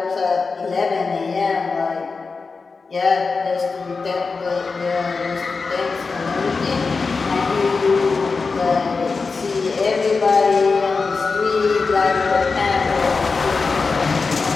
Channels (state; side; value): quieter; right; 4.4 dB